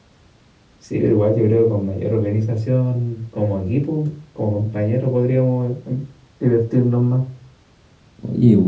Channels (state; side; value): identical; both; correlation 1.00